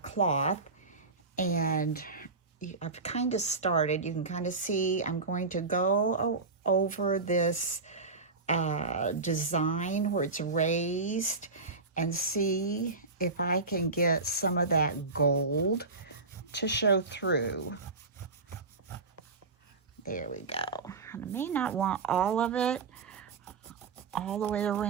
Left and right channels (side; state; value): left; quieter; 4.0 dB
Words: cloth, and I've kind of started, you can kind of see, I'm going to go over this design where it's raised and see if I can get some of that gold to show through. There we go. And I may not want all of it all the way